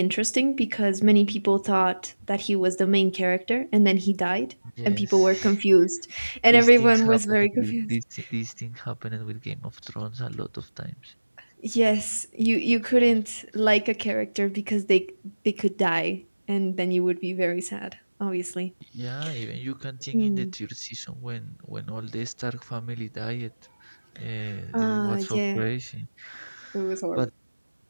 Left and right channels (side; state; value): both; inverted; correlation -1.00